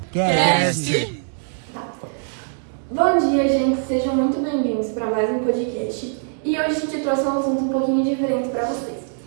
Cast. Bom dia, gente. Sejam muito bem-vindos para mais um podcast. E hoje a gente trouxe um assunto um pouquinho diferente para vocês.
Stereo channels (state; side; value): silent; left; digital silence